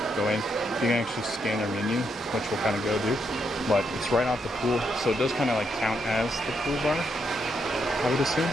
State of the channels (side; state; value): both; normal; correlation 0.79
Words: go in. You can actually scan their menu, which we'll kind of go do, but it's right off the pool, so it does kind of like count as the pool bar, I would assume.